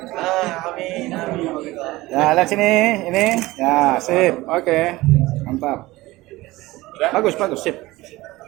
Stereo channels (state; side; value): quieter; left; 19.2 dB